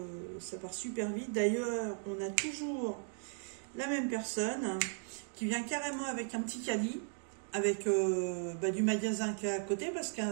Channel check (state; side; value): silent; left; 53 dB below the other